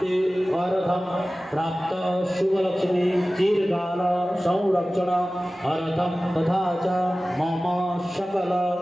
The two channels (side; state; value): both; normal; correlation 0.97